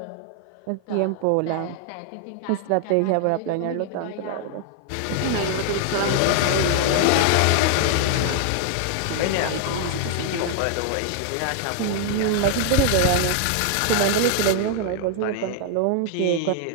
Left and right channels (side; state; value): both; different; correlation 0.00